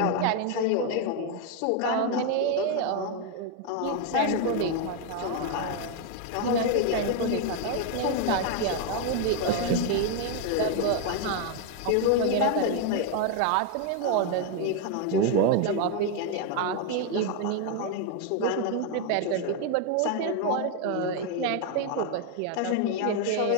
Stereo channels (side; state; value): both; different; correlation 0.01